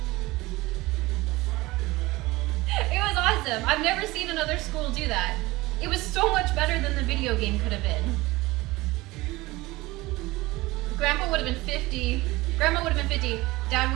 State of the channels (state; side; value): quieter; left; 20.4 dB